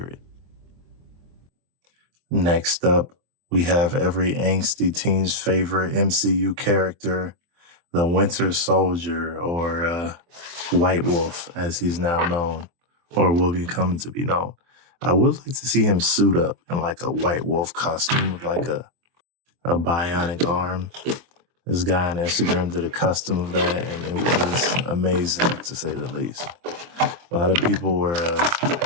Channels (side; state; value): left; late; 24 ms